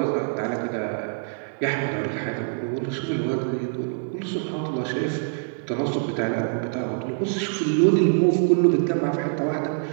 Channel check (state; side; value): silent; left; digital silence